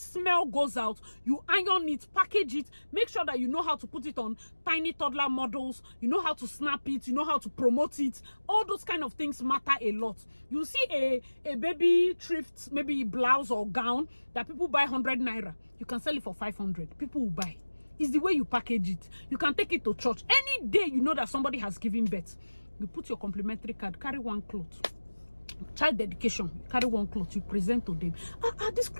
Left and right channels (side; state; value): both; inverted; correlation -1.00